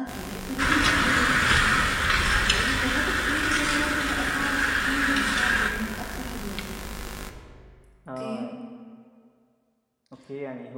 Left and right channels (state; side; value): identical; both; correlation 1.00